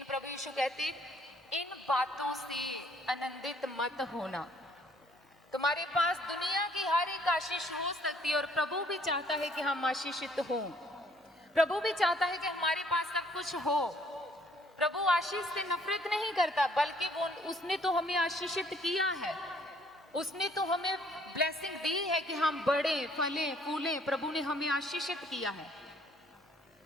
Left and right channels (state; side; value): normal; both; correlation 0.62